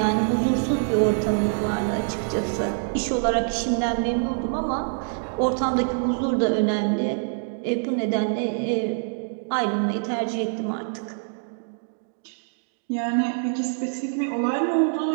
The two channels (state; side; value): silent; left; digital silence